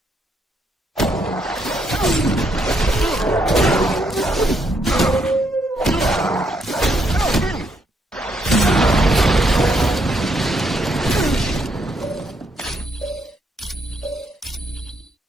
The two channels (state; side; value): normal; both; correlation 0.75